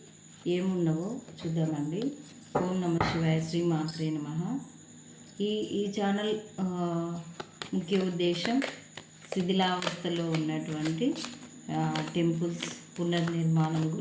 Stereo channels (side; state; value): both; identical; correlation 1.00